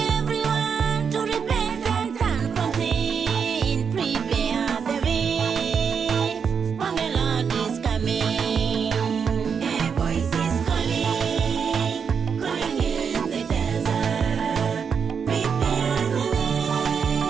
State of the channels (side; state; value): left; quieter; 6.5 dB